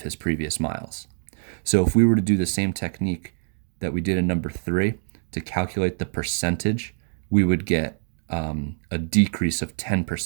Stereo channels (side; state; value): left; silent; digital silence